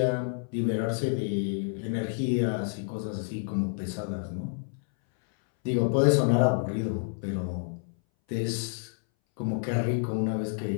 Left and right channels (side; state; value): right; silent; 59 dB below the other